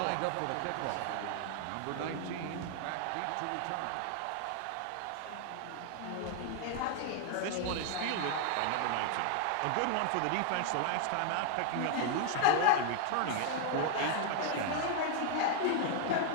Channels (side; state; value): both; different; correlation 0.00